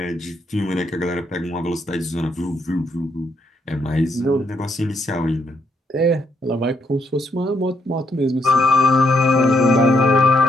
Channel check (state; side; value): normal; both; correlation 0.75